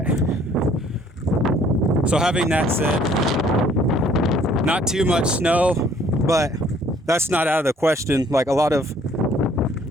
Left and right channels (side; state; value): both; normal; correlation 0.59